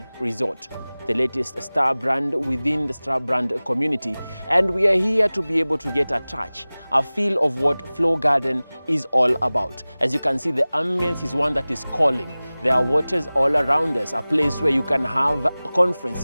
Resort, the latest star brand within the star brand community. And we are here to be able to get a touch, a feel of what Flogarden is all about. As you can see, the ambience is one that is calling. There are waters all around us, a place where you can have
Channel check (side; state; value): both; inverted; correlation -0.99